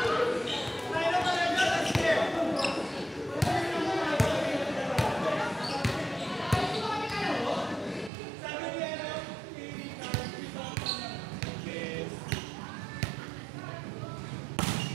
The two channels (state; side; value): drops out; left; at 8.1 s